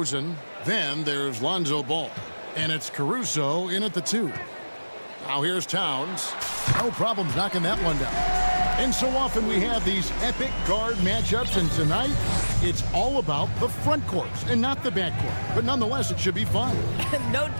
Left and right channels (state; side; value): inverted; both; correlation -1.00